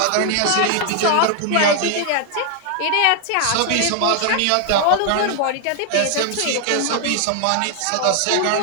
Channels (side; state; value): both; different; correlation 0.01